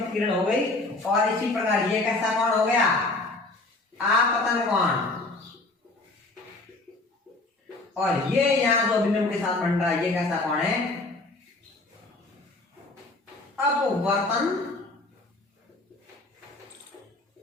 किरण हो गई। और इसी प्रकार ये कैसा कोण हो गया? आपतन कोण। और ये यहाँ जो अभिलंब के साथ बन रहा है ये कैसा कोण है? अपवर्तन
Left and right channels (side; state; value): right; quieter; 3.1 dB